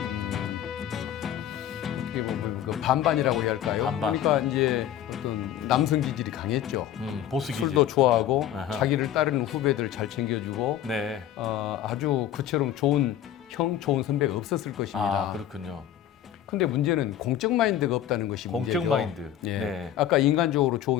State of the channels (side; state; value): right; quieter; 11.1 dB